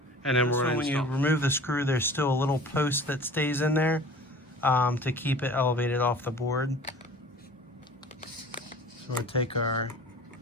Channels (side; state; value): both; normal; correlation 0.43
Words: and then we're going to when you remove the screw, there's still a little post that stays in there to keep it elevated off the board. So we'll take our